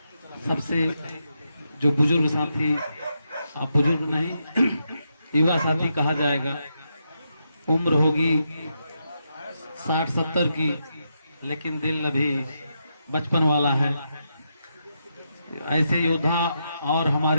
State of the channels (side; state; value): both; inverted; correlation -0.83